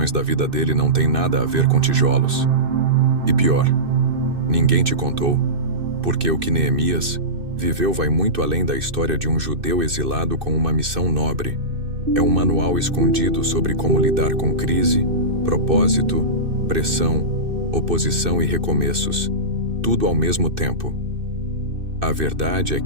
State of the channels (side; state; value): left; late; 2.6 ms